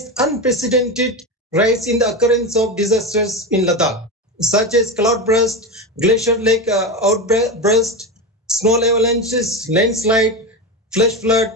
unprecedented rise in the occurrence of disasters in Ladakh, such as cloudburst, glacier lake outburst, snow avalanches, landslide, flash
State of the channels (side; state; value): both; normal; correlation 0.18